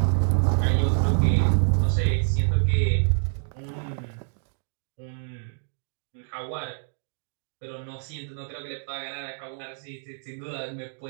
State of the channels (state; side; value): silent; left; digital silence